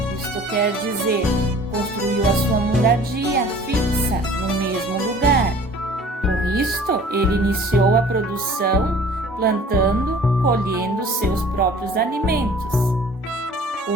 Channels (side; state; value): both; normal; correlation 0.49